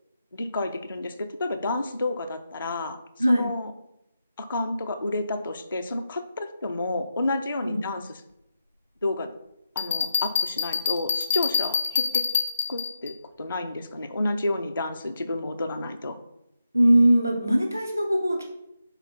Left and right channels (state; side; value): inverted; both; correlation -0.87